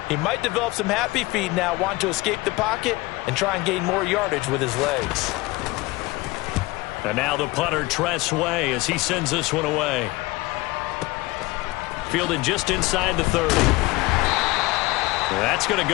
He might develop some happy feet now, want to escape the pocket and try and gain more yardage with his legs. And now the punter, Tress Way, as he sends this one away. Fielded just inside the 30. That's going to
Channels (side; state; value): right; quieter; 21.4 dB